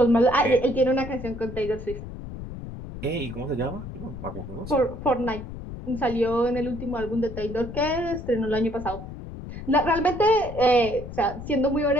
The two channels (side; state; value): left; noise; rumble, 10 dB below the sound